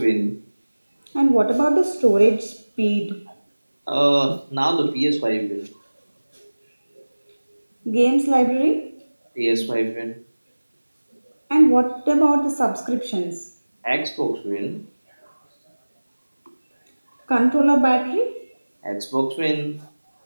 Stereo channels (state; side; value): inverted; both; correlation -1.00